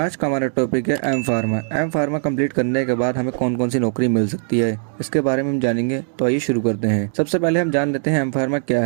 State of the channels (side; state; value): left; silent; digital silence